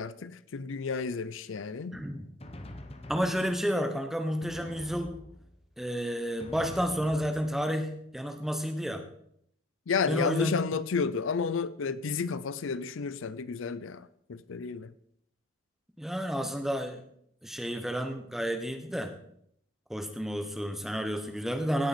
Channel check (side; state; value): both; normal; correlation 0.58